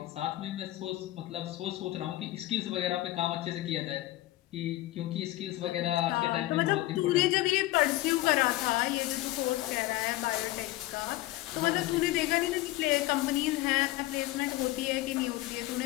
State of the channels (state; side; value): quieter; right; 17.2 dB